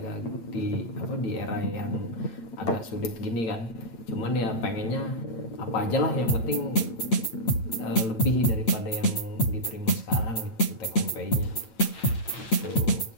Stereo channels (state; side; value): late; right; 8.8 ms